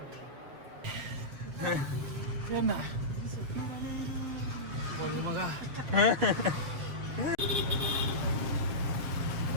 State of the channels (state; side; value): late; left; 7.6 ms